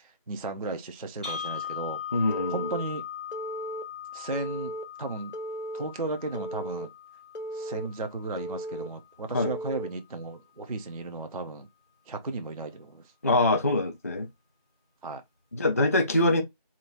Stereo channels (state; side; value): inverted; both; correlation -0.42